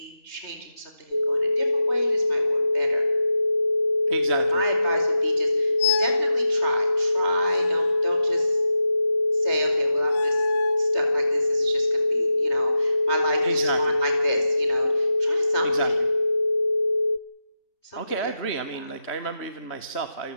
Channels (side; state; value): right; late; 3.3 ms